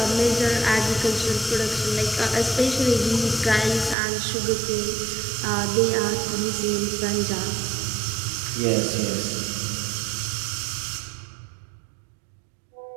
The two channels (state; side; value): drops out; left; at 4.0 s